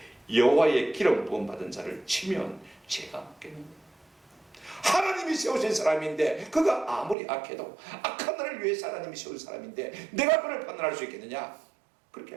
여호와의 기름 부음 받은 자를 치면 죄가 묻겠느냐. 하나님이 세우신 사람인데, 그가 아무리 악해도 악한 나를 위해서 하나님이 세운 사람인데 내가 그를 판단할 수 있겠느냐? 그렇게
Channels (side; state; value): left; drops out; at 7.2 s